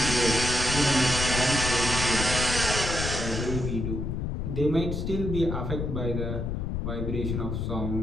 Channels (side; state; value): left; noise; rumble, 2 dB below the sound